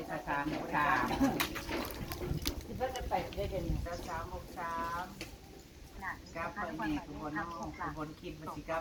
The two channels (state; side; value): identical; both; correlation 1.00